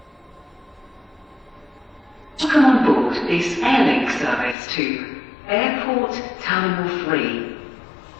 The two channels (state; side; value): drops out; right; at 4.5 s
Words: Welcome on board this airlink service to Airport Terminal 3.